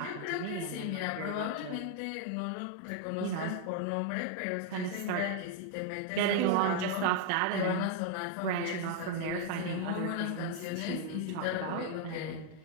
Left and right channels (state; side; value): different; both; correlation 0.00